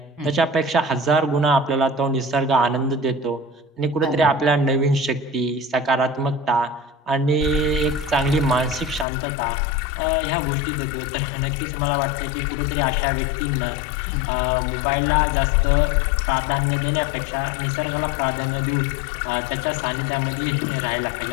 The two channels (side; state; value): right; drops out; at 9.1 s